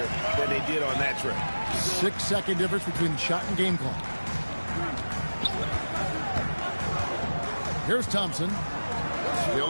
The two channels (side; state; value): both; inverted; correlation -1.00